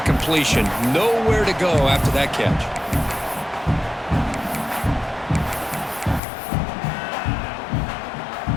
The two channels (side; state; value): right; drops out; at 6.2 s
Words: completion. Nowhere to go after that catch.